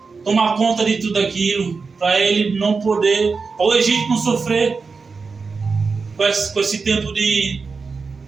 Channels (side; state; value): left; quieter; 4.7 dB